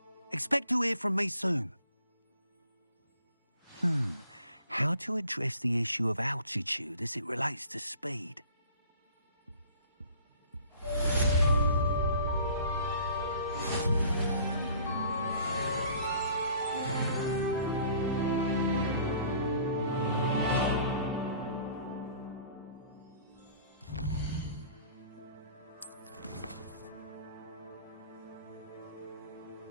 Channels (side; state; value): both; inverted; correlation -0.51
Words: Expect to hear from me soon. How to address the issue of altitude as it relates to speed.